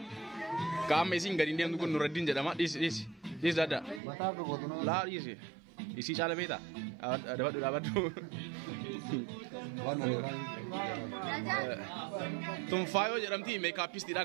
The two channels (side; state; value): left; drops out; at 4.0 s